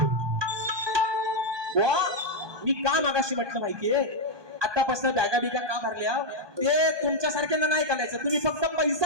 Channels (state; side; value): late; left; 1.2 ms